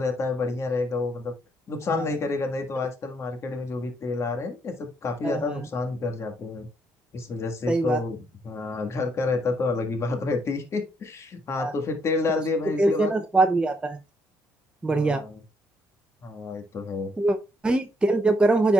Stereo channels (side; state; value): both; normal; correlation 0.73